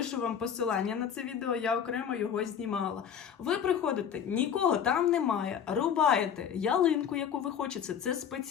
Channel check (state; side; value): quieter; right; 8.2 dB